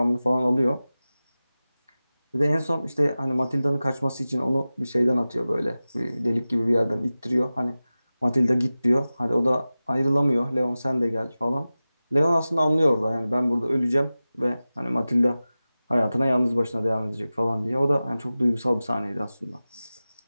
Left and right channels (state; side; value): inverted; both; correlation -0.96